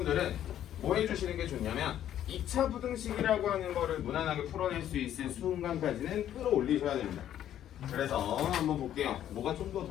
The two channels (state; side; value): quieter; right; 11.1 dB